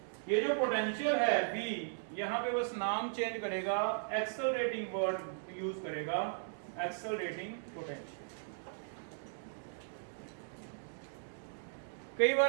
ये जो पोटेंशियल है V, यहाँ पे बस नाम चेंज करेगा, एक्सेलरेटिंग वर्ड यूज करेगा, एक्सेलरेटिंग पोटेंशियल। कई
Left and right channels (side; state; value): left; silent; digital silence